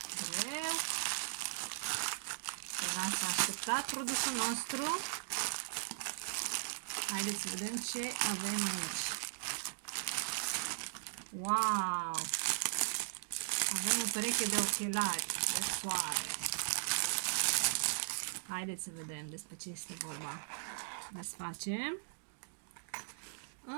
Greu. Se lasă așteptat produsul nostru. Haideți să vedem ce avem aici. Wow! Avem o pereche de ochelari de soare. Haideți să vedem despre ce este vorba. Desfacem.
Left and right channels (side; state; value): left; silent; digital silence